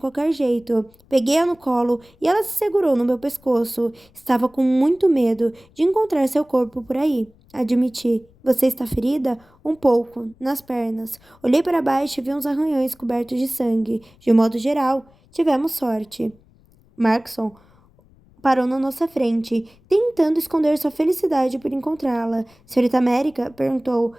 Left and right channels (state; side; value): noise; left; rumble, 30 dB below the sound